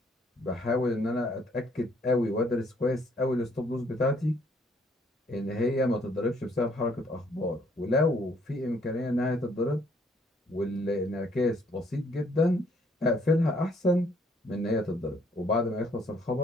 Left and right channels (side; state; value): both; normal; correlation 0.65